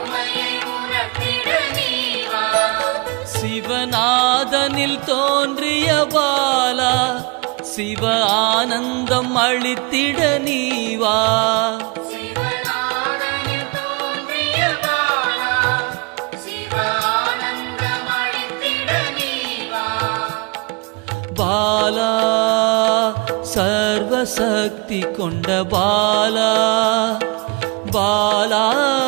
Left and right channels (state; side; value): quieter; left; 30.1 dB